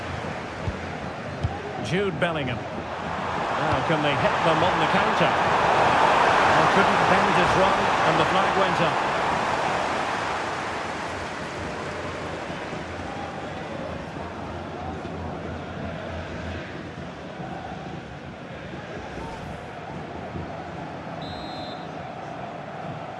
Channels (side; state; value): both; identical; correlation 1.00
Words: Jude Bellingham. Now can they hit them on the counter? Well, couldn't bend his run and the flag went up.